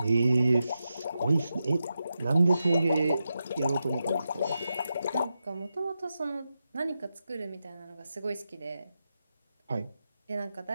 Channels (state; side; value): inverted; both; correlation -0.89